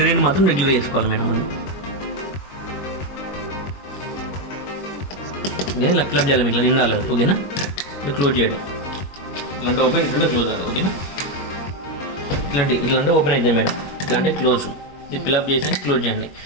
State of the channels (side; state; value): right; late; 21 ms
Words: మాత్రం రెగ్యులర్ చేసుకోవాలి మేడం. ఓకేనా. ఇలా క్లబ్ చేయాలి, ఇట్లా నిండాలి. ఓకేనా. ఇట్లా క్లోజ్ చేయడం, ఇట్లాంటి ఓపెన్ ఇట్లా క్లోజ్ అవ్వాలి. ఓకేనా. ఇట్లాంటి ఓపెన్ అవుతుంది మేడం, ఇట్లాంటి క్లోజ్. ఇది ఫిల్అప్ చేసి క్లోజ్ చేయండి.